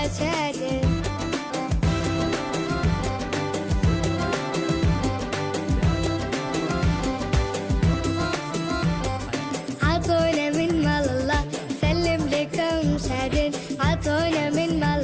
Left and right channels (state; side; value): identical; both; correlation 1.00